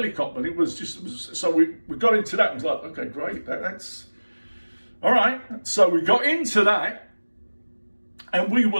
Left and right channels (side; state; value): both; inverted; correlation -1.00